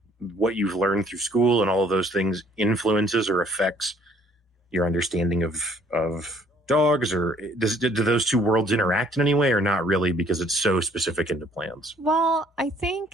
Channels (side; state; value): both; normal; correlation 0.61